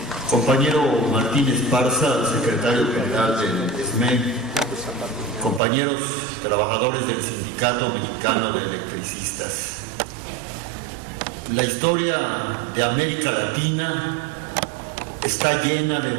Compañero Martín Esparza, secretario general del SME, compañeros trabajadores del Sindicato Mexicano de Electricistas. La historia de América Latina está llena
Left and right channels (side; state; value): left; drops out; at 5.6 s